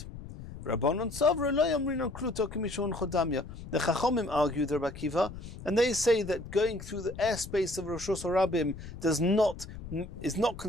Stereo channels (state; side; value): noise; left; rumble, 12 dB below the sound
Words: Rabbanon Sovra lo yomrinon kluto k'mishon chodamya. The Chachamim argue the Rabbi Akiva, and they say that going through the airspace of Reshus HaRabim is not